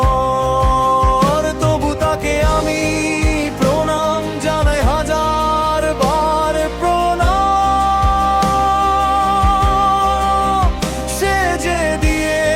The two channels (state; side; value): identical; both; correlation 1.00